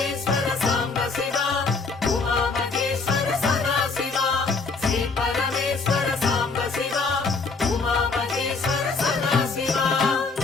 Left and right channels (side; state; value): right; quieter; 4.2 dB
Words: సాంబ శివ ఉమామహేశ్వర సదాశివ శ్రీ పరమేశ్వర సాంబ శివ ఉమామహేశ్వర సదాశివ